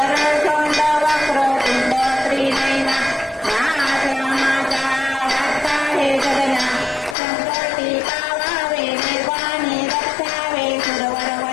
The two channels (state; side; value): drops out; right; at 7.2 s